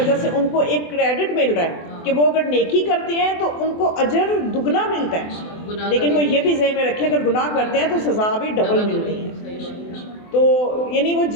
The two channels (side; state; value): right; late; 24 ms